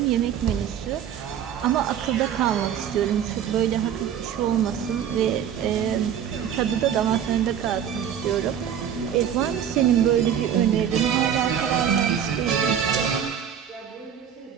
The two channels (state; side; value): quieter; left; 9.0 dB